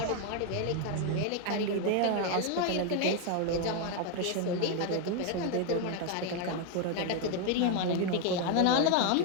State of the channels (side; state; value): both; different; correlation 0.01